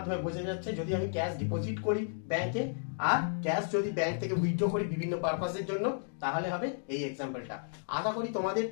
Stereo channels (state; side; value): silent; right; digital silence